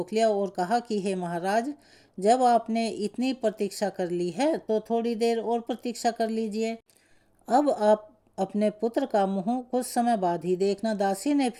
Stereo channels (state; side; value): identical; both; correlation 1.00